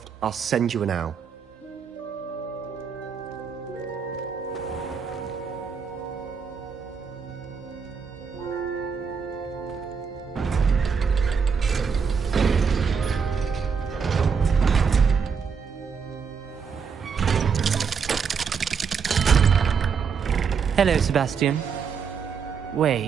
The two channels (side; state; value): left; quieter; 6.2 dB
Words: I'll send you an owl. Hello, Sebastian.